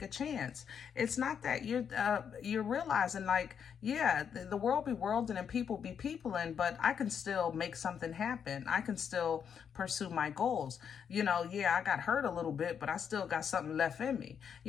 a chance. It's not that you're realizing, like, yeah, the world be worlding and people be peopling, but I can still make something happen. I can still pursue my goals. You know, yeah, I got hurt a little bit, but I still got something left in me.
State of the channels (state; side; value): quieter; right; 7.6 dB